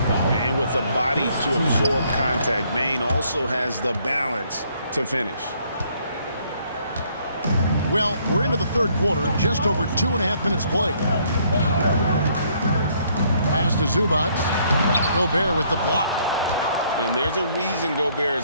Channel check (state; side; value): inverted; both; correlation -0.67